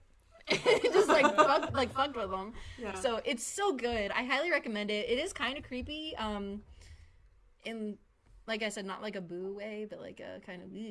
like, fucked with them. Yeah. So, it's so good. I highly recommend it. It is kind of creepy, in, like I said, not like a boo way, but like a kind of...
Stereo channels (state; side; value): identical; both; correlation 1.00